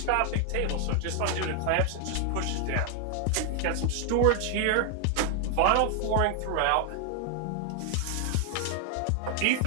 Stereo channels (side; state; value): both; different; correlation 0.00